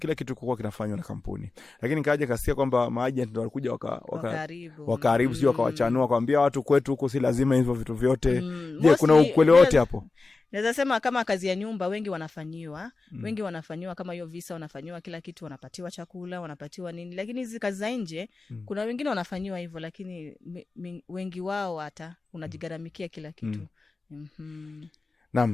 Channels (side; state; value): right; quieter; 3.8 dB